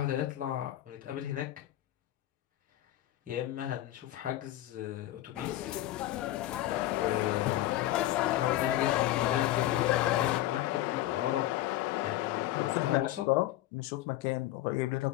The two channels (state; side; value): quieter; right; 14.9 dB